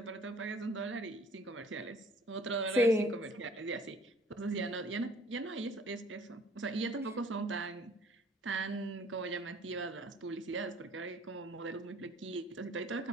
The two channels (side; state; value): both; normal; correlation 0.55